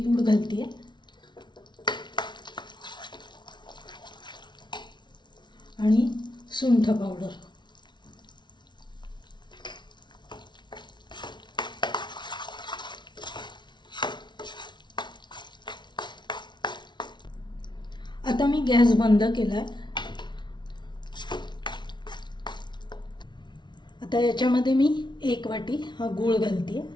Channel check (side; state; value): right; late; 0.22 ms